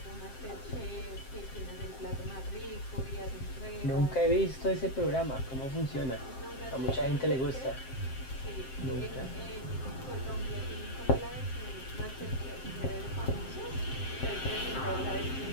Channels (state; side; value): late; right; 7.6 ms